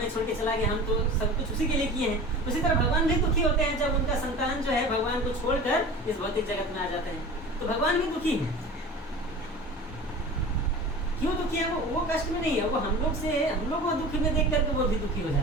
छोड़ के चला गया, हम तो सब कुछ उसी के लिए किए हैं। उसी तरह भगवान भी दुखी होते हैं जब उनका संतान जो है भगवान को छोड़कर इस भौतिक जगत में आ जाते हैं। तो भगवान भी दुखी है। क्यों दुखी है? वो कष्ट में नहीं है, वो हम लोग को दुखी में देख करके वो भी दुखी हो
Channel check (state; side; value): normal; both; correlation 0.36